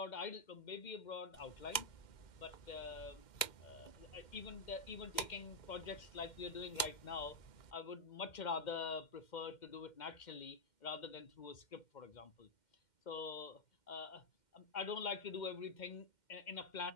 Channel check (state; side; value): late; right; 2.1 ms